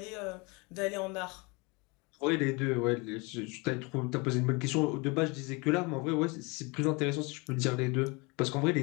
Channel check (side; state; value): right; quieter; 28.1 dB